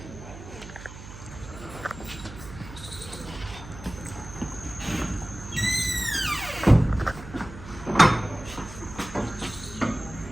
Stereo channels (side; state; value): right; noise; hum, 14 dB below the sound